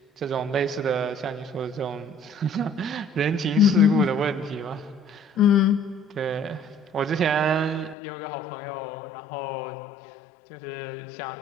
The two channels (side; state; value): right; drops out; at 8.0 s